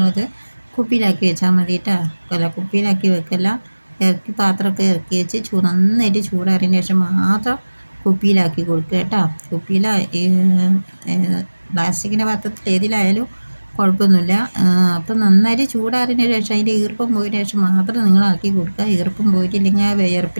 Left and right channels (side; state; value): both; inverted; correlation -1.00